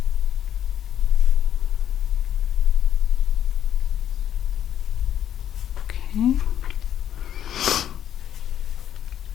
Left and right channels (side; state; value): right; quieter; 10.3 dB